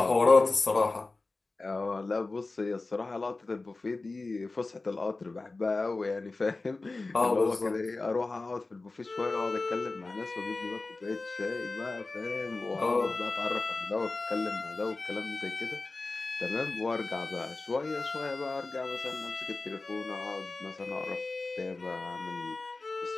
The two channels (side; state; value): right; quieter; 3.4 dB